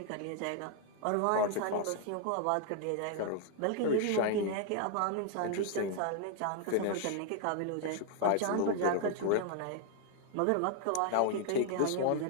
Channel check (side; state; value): both; different; correlation 0.00